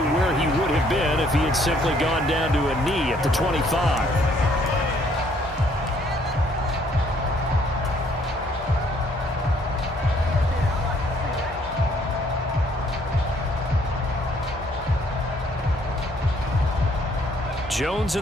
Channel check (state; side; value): normal; both; correlation 0.64